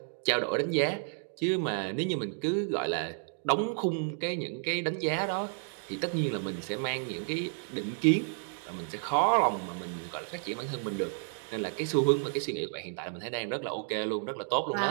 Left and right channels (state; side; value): silent; left; 57 dB below the other